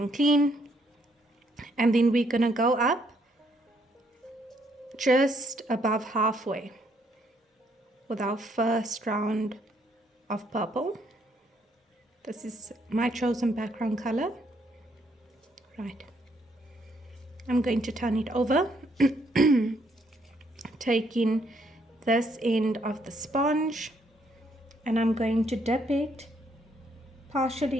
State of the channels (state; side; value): normal; both; correlation 0.71